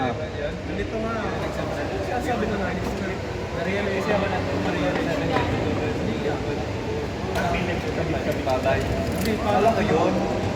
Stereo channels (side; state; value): both; identical; correlation 1.00